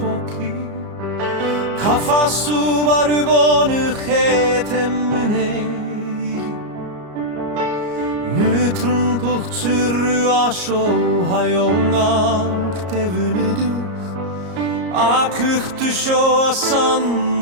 카파수 바르보느 해 때문에 느트른 북츠르 아쇼 하용한 때문에도 아크흐트쇼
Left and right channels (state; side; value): late; left; 34 ms